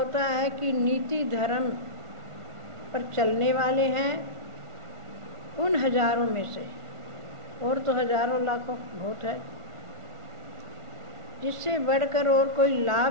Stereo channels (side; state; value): left; late; 1.5 ms